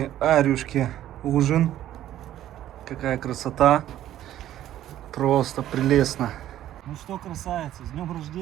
Арюшки ужин. Какая красота. Просто прелестно. Ну что, красавица, с днем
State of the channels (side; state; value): left; quieter; 12.6 dB